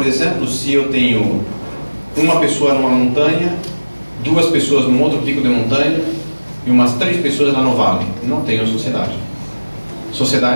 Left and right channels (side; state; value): both; inverted; correlation -1.00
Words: exemplo, se eu tenho uma pessoa numa montanha, duas pessoas num outro pico de montanha e umas 3 pessoas lá no vale. Não tenho sociedade.